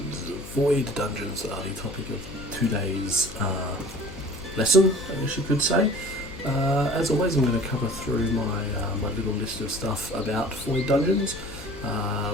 Void Dungeons are the topic of today's lesson, I guess you could say. As always, I'm going to cover through my little list of stuff about Void Dungeons.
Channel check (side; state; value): left; noise; hum, 14 dB below the sound